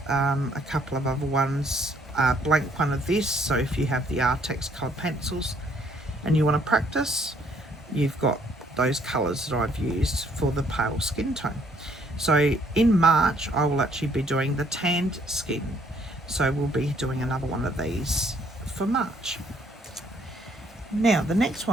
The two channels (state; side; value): normal; both; correlation 0.65